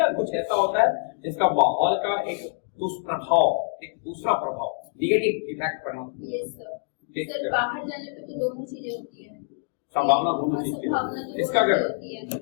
कुछ ऐसा होता है जिसका माहौल का एक दुष्प्रभाव, एक दूसरा प्रभाव, निगेटिव इफेक्ट पड़ना? यस सर, बाहर जाने पे तो दोनों चीजें होती है, संभावना दोनों चीज की। इसका अगर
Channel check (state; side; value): silent; right; digital silence